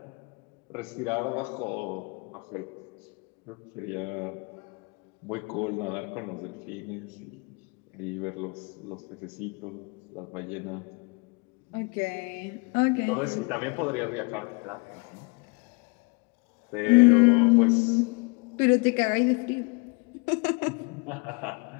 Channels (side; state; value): right; quieter; 30.6 dB